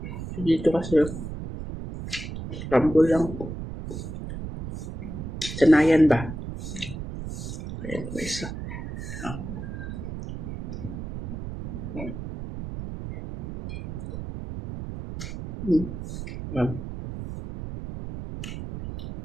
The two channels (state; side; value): noise; right; rumble, 7 dB below the sound